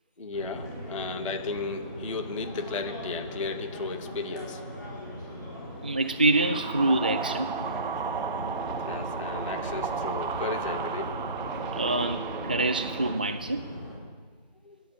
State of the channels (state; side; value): inverted; both; correlation -0.37